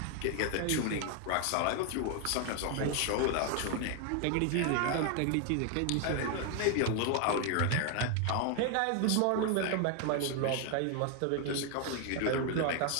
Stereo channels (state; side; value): different; both; correlation 0.01